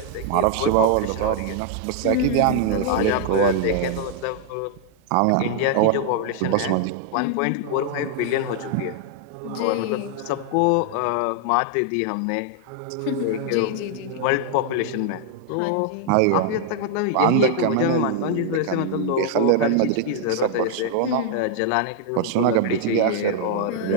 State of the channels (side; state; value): both; different; correlation 0.00